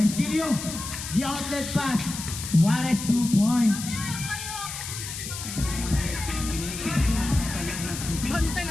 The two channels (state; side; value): noise; left; hiss, 8 dB below the sound